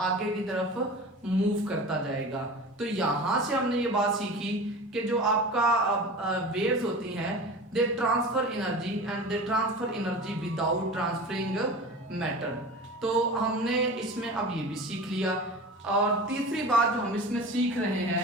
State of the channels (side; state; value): both; normal; correlation 0.34